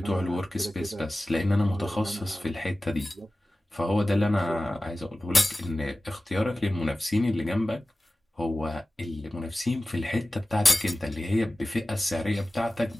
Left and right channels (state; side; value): normal; both; correlation 0.96